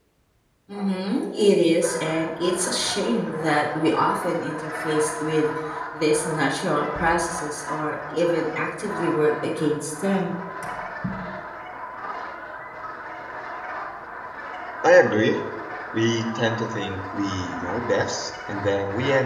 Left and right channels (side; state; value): both; identical; correlation 1.00